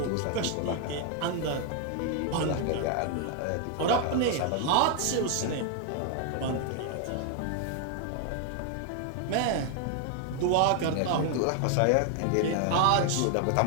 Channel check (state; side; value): different; both; correlation 0.00